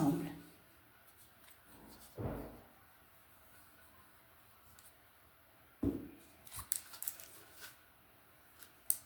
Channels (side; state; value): both; identical; correlation 1.00